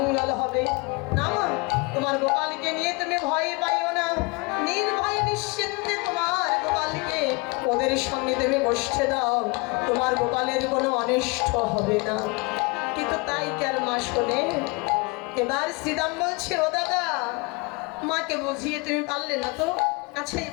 হবে না? তোমার গোপালকে নিয়ে তুমি ভয় পাইও না, নির্ভয় নিশ্চিন্তে তোমার গোপালকে ওদের সঙ্গে তুমি বসতে দাও, তোমার গোপালের কোনো অনিষ্ট হবে না। কিন্তু তাই কার মা শোনে? এবার শ্রীরাম বলছে, ও দাদা, মাকে বুঝিয়ে তুমি পারলে না তো, আচ্ছা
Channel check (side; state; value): right; quieter; 27.7 dB